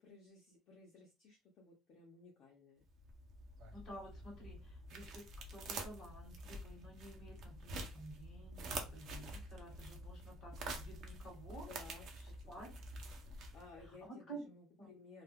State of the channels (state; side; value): normal; both; correlation 0.59